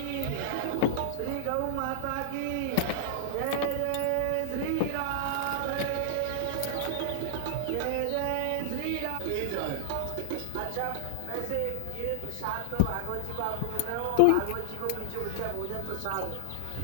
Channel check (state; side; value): different; both; correlation -0.01